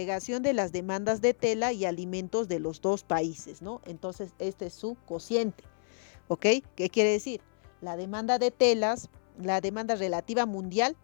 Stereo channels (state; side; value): silent; right; 57 dB below the other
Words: de las demandas de tela y alimentos de los dos países, ¿no? Entonces, este es su cociente, ¿ok? ¿Qué quiere decir? La demanda de telas, la demanda relativa mundial